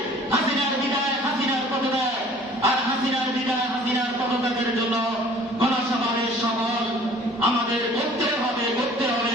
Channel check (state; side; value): normal; both; correlation 0.51